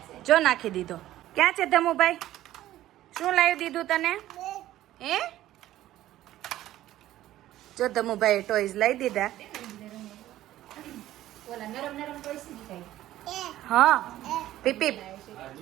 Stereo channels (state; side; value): quieter; left; 14.1 dB